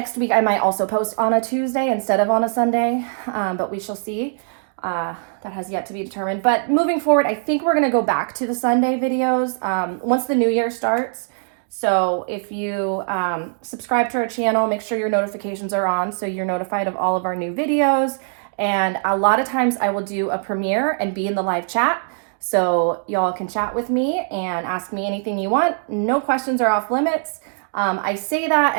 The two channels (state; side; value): silent; left; digital silence